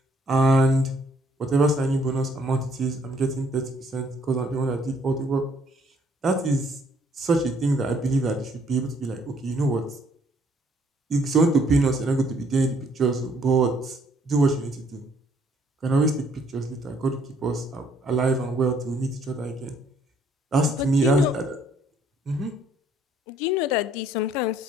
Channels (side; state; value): both; normal; correlation 0.65